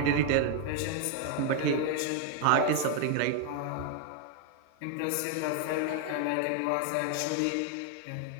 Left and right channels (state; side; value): different; both; correlation 0.01